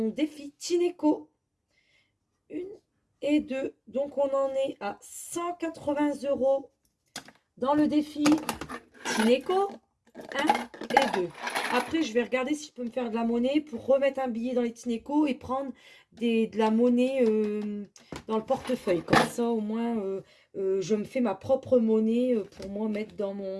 défi Tineco. 1 et 2. Donc, on en est à 180 € dans le défi Tineco 1 et 2. Après, je vais regarder si je peux me faire de la monnaie pour remettre un billet dans les Tineco et prendre de la monnaie dans le portefeuille. Comme ça, au moins, je me fais ma propre monnaie pour moi mettre dans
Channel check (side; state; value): both; identical; correlation 1.00